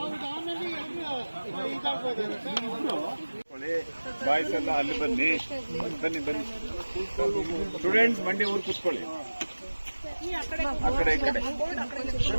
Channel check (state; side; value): inverted; both; correlation -1.00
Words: ಬಾಯ್ಸ್ ಎಲ್ಲ ಅಲ್ಲಿ ಬನ್ನಿ. ಬನ್ನಿ ಬನ್ನಿ ಸ್ಟೂಡೆಂಟ್ಸ್, ಮಂಡಿ ಊರು ಕೂತ್ಕೊಳ್ಳಿ. ಆ ಕಡೆ ಈ ಕಡೆ